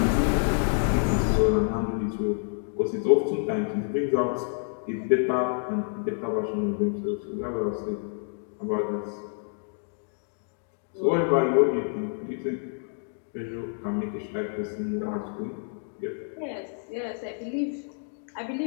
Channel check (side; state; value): right; silent; 59 dB below the other